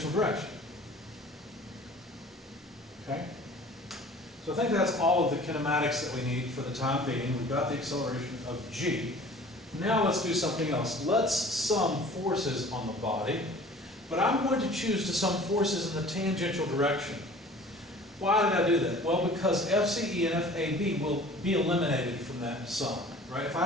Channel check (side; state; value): both; normal; correlation 0.46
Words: direction. Okay? So I think that's all of the kinematics that we need for the time being. We've got the acceleration of g. Now let's do something else. Let's sum forces on the body, but I'm going to choose to sum forces in the tangential direction. Why did I do that? Well, because FCE and FAB will be eliminated from that sum, right? If